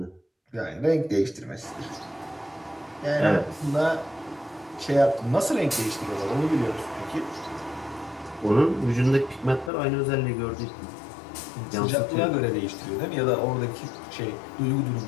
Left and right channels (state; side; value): drops out; right; at 9.7 s